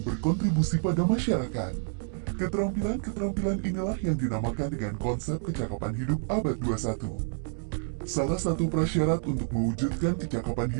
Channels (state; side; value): silent; left; 59 dB below the other